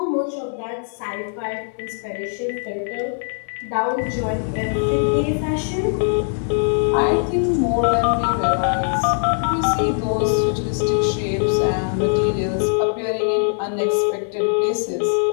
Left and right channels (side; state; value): right; silent; 61 dB below the other